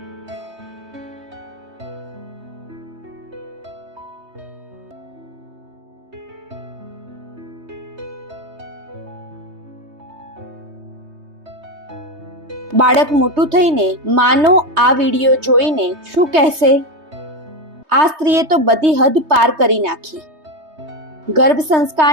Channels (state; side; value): late; left; 3.2 ms